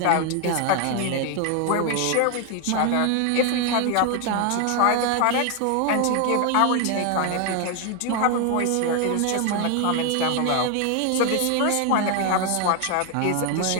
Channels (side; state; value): both; different; correlation 0.00